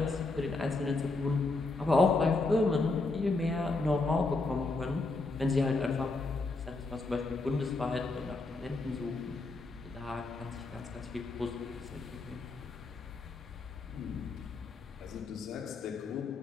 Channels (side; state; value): right; quieter; 3.4 dB